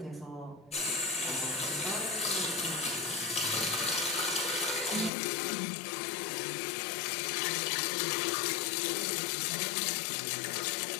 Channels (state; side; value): drops out; right; at 5.1 s